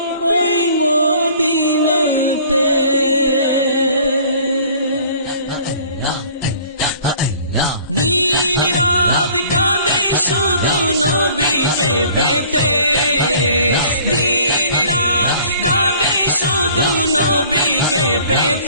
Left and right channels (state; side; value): inverted; both; correlation -0.52